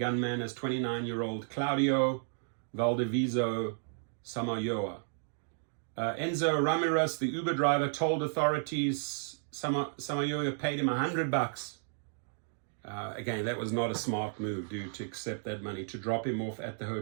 as 29-year-old Claudio Valdeviso Samayoa. Enzo Ramirez, the Uber driver, told authorities Samayoa paid him $100. Again, that was not a smart move, dude, to accept that money, to drop him off at the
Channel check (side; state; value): left; silent; digital silence